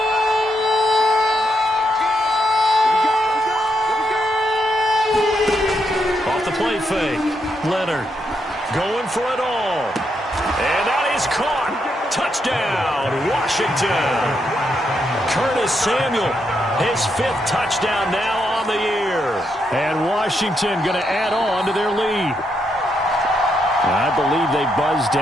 Play fake. Leonard going for it all. And that is caught. Touchdown, Washington. Curtis Samuel, his 5th touchdown now on the year. And Washington going to add on to their lead. I believe they buzzed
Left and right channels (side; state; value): both; normal; correlation 0.80